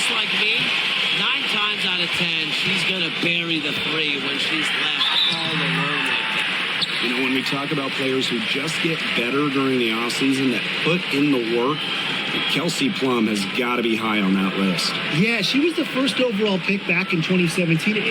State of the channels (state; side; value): identical; both; correlation 1.00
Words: like me, 9 times out of 10, she's going to bury the three when she's left all alone like that. You know, when we talk about players who just get better during the offseason, that put in the work, Kelsey Plum has got to be high on that list. Yeah, she was the first overall pick back in 2017,